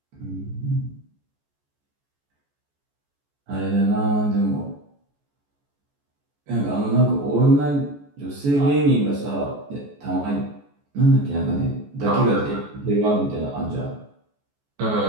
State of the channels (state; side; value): late; left; 14 ms